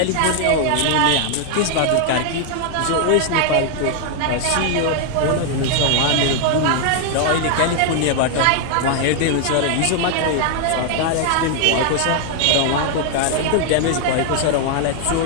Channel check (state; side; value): different; both; correlation 0.00